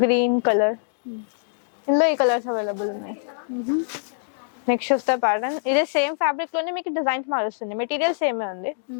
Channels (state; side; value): silent; right; digital silence